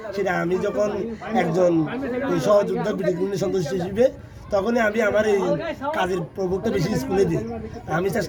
সেটা আমি যখন একজন সহযোদ্ধা বিডিগ্রি সদস্য হিসেবে, তখনই আমি আমার এই কাজের প্রভাবটা বেশি স্কুলে দিই। আমি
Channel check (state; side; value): identical; both; correlation 1.00